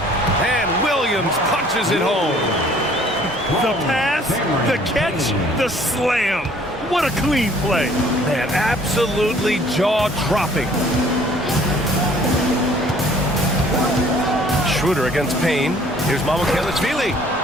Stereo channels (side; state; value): both; normal; correlation 0.56